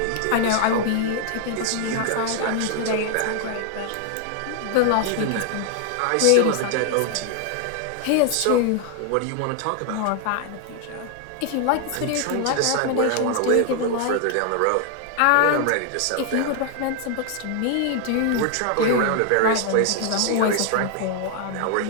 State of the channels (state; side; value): different; both; correlation 0.00